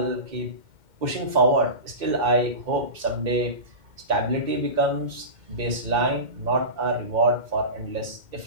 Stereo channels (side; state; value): left; late; 2.1 ms